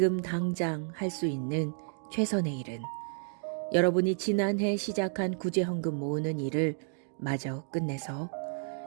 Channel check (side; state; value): left; silent; digital silence